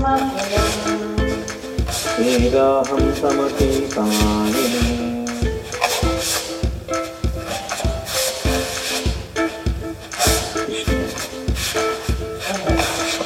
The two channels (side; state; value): both; identical; correlation 1.00